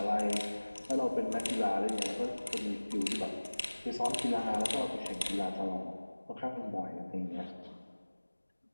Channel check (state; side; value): inverted; both; correlation -1.00